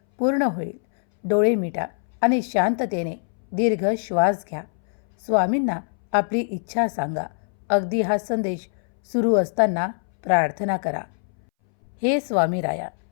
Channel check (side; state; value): right; silent; 62 dB below the other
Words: पूर्ण होईल. डोळे मिटा आणि शांततेने दीर्घ श्वास घ्या. स्वामींना आपली इच्छा सांगा. अगदी हा संदेश सुरू असताना प्रार्थना करा. हे स्वामीराया,